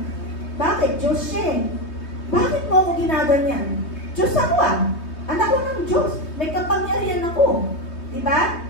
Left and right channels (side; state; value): right; late; 3.2 ms